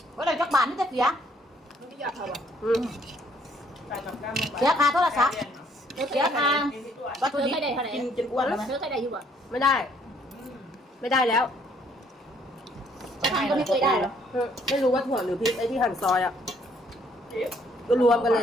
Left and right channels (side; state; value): both; normal; correlation 0.65